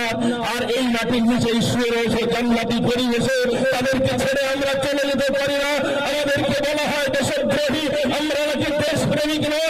আর এই মাটির নিচে শুয়ে রয়েছে জান্নাতি পরিবেশে। তাদেরকে ছেড়ে আমরা চলে যেতে পারি না। আমাদেরকে বলা হয় দেশদ্রোহী, আমরা নাকি দেশপ্রেমিক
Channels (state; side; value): identical; both; correlation 1.00